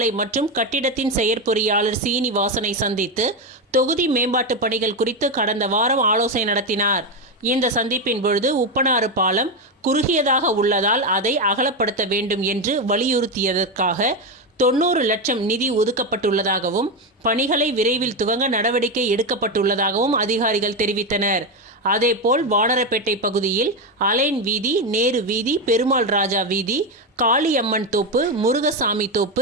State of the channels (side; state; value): both; normal; correlation 0.11